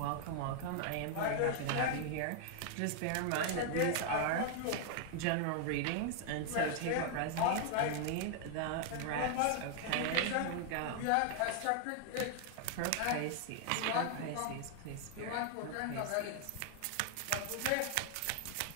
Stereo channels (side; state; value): both; different; correlation 0.00